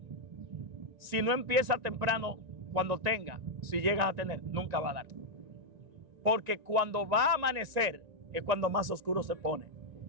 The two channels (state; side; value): late; left; 1.9 ms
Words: Si no empieza temprano, cuando tenga, si llegas a tener, nunca va a dar. Porque cuando va a amanecer es cuando más oscuro se pone.